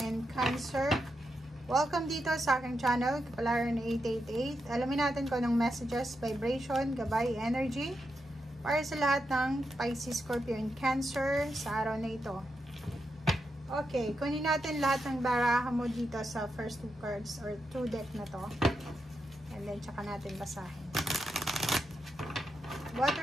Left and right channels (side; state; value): both; normal; correlation 0.85